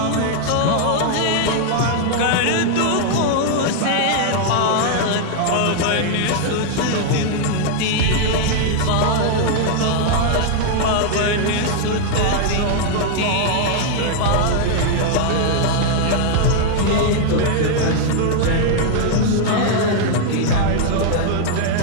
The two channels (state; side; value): different; both; correlation 0.00